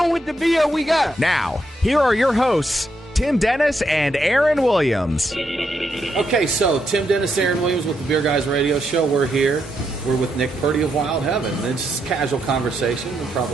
with the beer we got? Now, here are your hosts, Tim Dennis and Aaron Williams. Okay, so Tim Dennis, Aaron Williams with the Beer Guys Radio Show. We're here. We're with Nick Purdy of Wild Heaven. It's just casual conversation. We'll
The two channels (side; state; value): both; normal; correlation 0.80